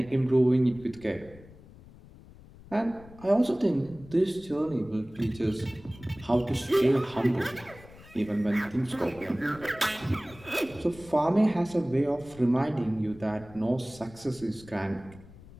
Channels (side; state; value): left; noise; rumble, 21 dB below the sound